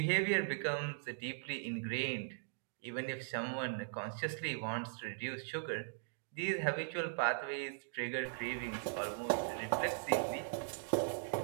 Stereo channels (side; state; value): left; silent; digital silence